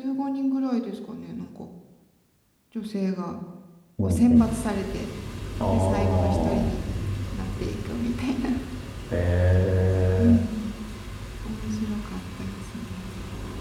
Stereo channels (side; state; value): both; identical; correlation 1.00